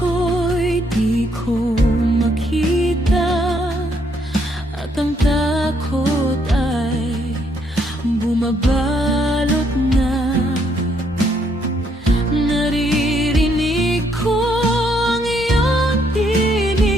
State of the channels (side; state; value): both; normal; correlation 0.71